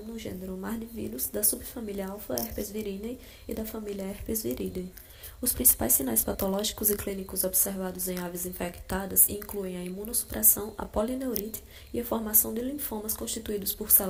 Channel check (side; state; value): both; identical; correlation 1.00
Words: no gênero Mardivírus da subfamília Alpha herpes viridae e da família Herpes viridae. Os principais sinais patológicos e clínicos observados em aves infectadas incluem a imunossupressão, a polineurite e a formação de linfomas constituídos por